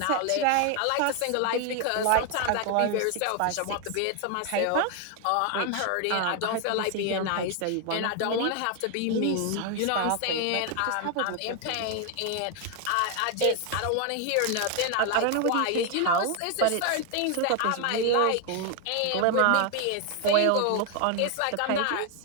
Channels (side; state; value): both; different; correlation 0.00